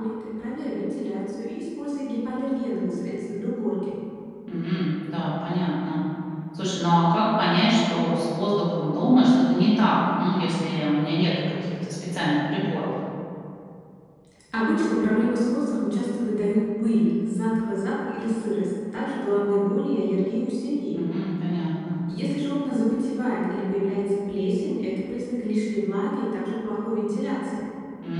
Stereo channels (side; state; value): both; identical; correlation 1.00